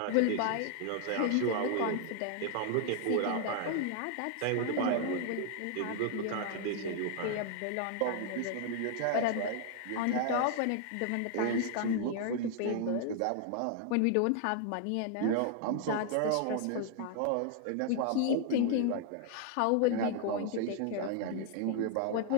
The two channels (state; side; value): different; both; correlation 0.00